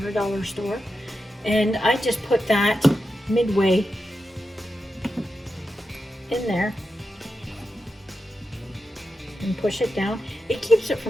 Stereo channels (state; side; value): normal; both; correlation 0.89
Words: or a dollar store. And I just put that midway in there and push it down. It keeps it